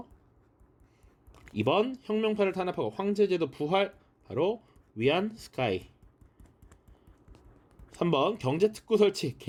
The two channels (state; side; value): identical; both; correlation 1.00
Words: 2번 혁명파를 탄압하고 황제제도 부활, 바로 위안 스카이. 3번 경제특구 설치,